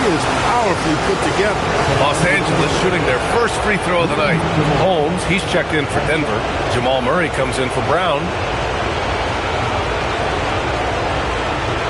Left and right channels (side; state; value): both; identical; correlation 1.00